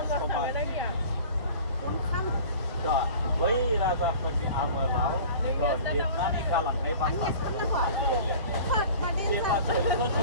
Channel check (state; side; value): inverted; both; correlation -0.43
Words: समाज दा बै राजाफोरनि आमोलाव लिरनानै गालांनाय बाथ्राफोरखौ जेब्ला